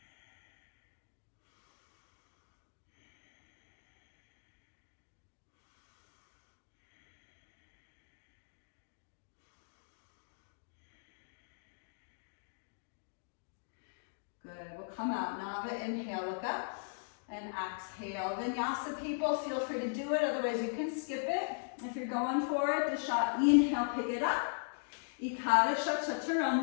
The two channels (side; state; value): right; silent; digital silence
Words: Good, we'll come out, Nava, inhale, look up. and exhale. Vinyasa people, feel free to do it, otherwise you can skip it. If you're going for it, Dasha, inhale, pick it up. Ekadasha,